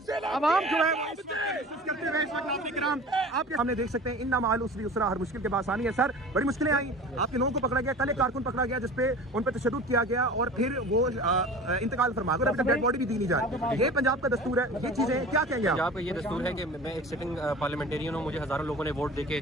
आवाम जो है करते हुए इस वक्त नाज़रीन किराम आपके सामने देख सकते हैं इन्ना माल उसरी उसरा हर मुश्किल के पास आनी है। सर, बड़ी मुश्किलें आई, आपके लोगों को पकड़ा गया, कल एक कारकुन पकड़ा गया जिसपे उन पर तशद्दुद किया गया और फिर वो इंतकाल फरमा गए, अभी तक डेड बॉडी भी दी नहीं जा रही। ये पंजाब का दस्तूर है, ये चीजें क्या कहेंगे आप? पंजाब का ये दस्तूर है कि मैं एक सिटिंग पार्लियामेंटेरियन हूँ, मुझे हज़ारों लोगों ने वोट देके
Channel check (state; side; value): normal; both; correlation 0.39